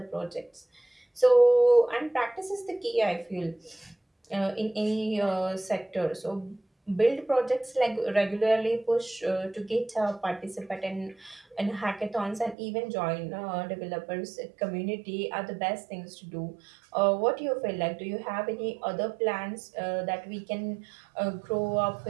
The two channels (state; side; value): drops out; left; at 12.6 s